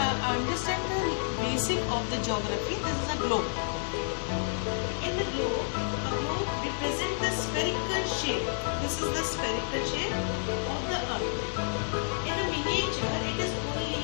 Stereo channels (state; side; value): silent; right; 58 dB below the other